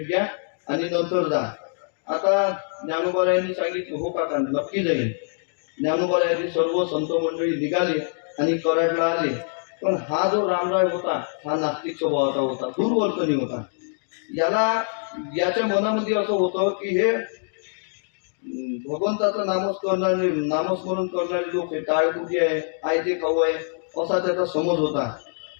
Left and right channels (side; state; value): right; silent; digital silence